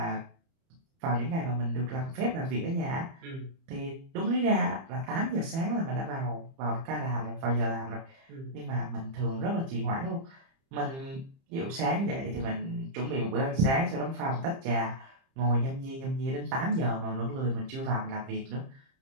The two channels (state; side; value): late; left; 30 ms